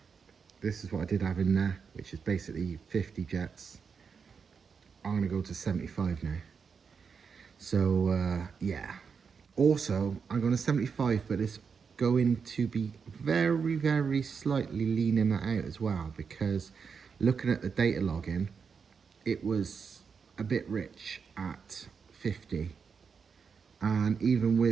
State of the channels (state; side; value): quieter; left; 5.9 dB